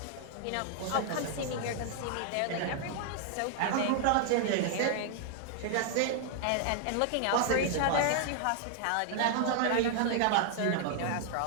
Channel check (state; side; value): different; both; correlation 0.00